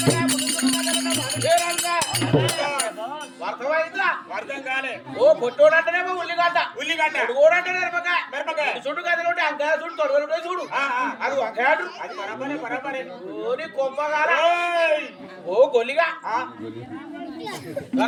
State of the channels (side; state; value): both; identical; correlation 1.00